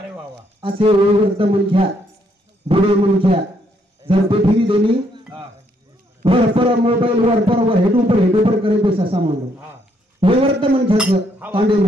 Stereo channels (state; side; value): normal; both; correlation 0.72